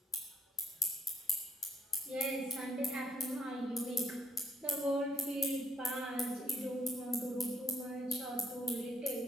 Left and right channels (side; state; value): both; normal; correlation 0.67